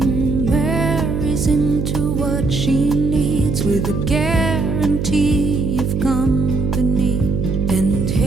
marries into what she needs, with a guarantee of company and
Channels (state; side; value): noise; right; hum, 2 dB below the sound